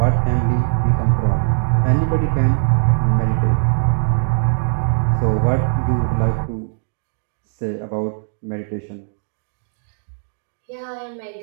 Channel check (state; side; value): silent; left; digital silence